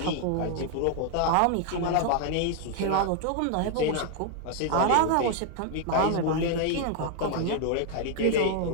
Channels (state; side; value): different; both; correlation 0.00